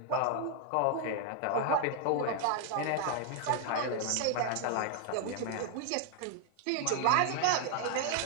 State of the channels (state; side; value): different; both; correlation 0.00